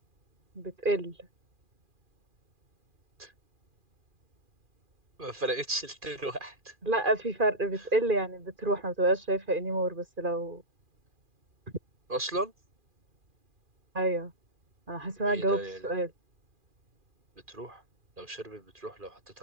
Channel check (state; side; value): late; left; 2.4 ms